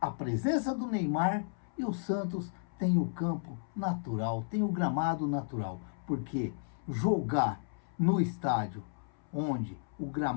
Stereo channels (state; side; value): silent; right; 56 dB below the other